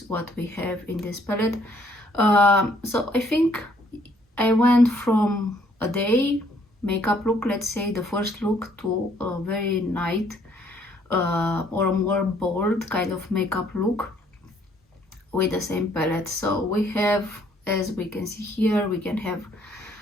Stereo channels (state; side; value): normal; both; correlation 0.65